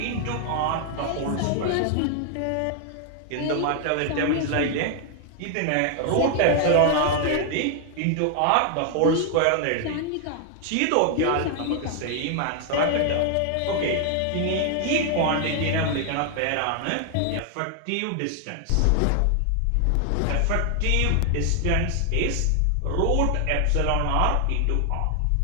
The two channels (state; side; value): different; both; correlation 0.00